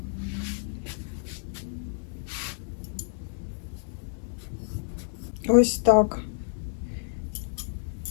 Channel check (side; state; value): right; silent; 58 dB below the other